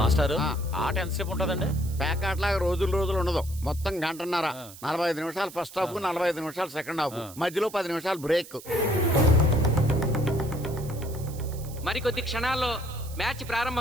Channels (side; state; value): right; noise; hiss, 17 dB below the sound